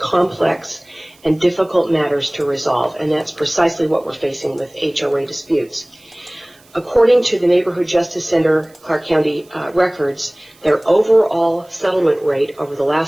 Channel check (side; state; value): right; noise; hiss, 29 dB below the sound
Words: and difficult matters to resolve, and that's precisely what we're facing with HOA disputes. According to the Neighborhood Justice Center Clark County records, their overall settlement rate over the